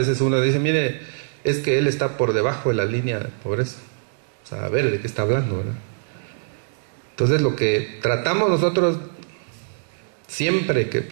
uno dice, mire, es que él está por debajo de la línea de pobreza. O sea, a ver de qué está hablando, ¿verdad? Entonces lo que tratamos nosotros siempre que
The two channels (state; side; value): silent; left; digital silence